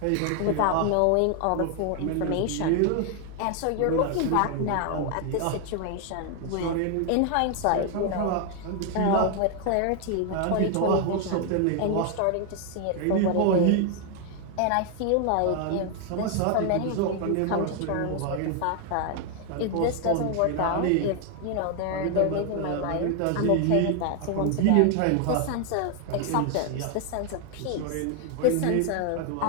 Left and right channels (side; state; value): both; different; correlation 0.00